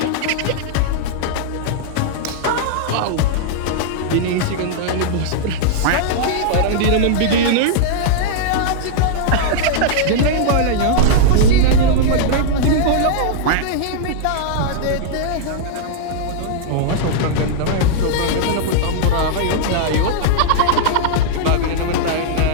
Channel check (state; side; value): different; both; correlation -0.01